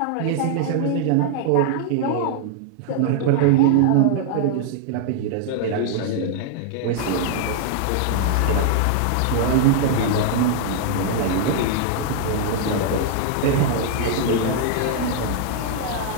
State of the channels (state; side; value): different; both; correlation -0.01